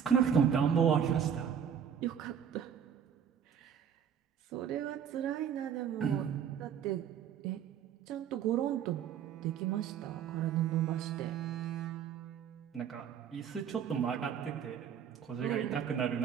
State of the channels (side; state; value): left; quieter; 8.3 dB